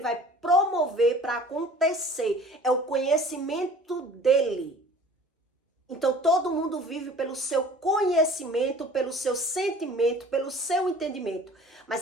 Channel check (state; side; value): normal; both; correlation 0.47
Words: vai promover para acontecer. É o conhecimento dele. Então, todo mundo vive pelo seu conhecimento, pelo seu sentimento, pelo seu entendimento. Mas